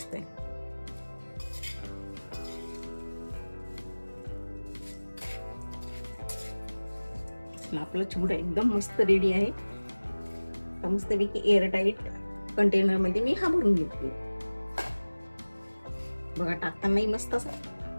आपला चिवडा एकदम मस्त रेडी आहे. मस्तपैकी एअरटाईट कंटेनर मध्ये मी हा भरून घेतली. बघा टाकतानाही मस्त असा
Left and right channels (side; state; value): both; inverted; correlation -1.00